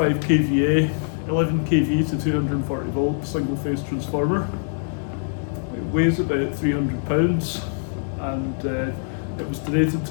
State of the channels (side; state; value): right; silent; digital silence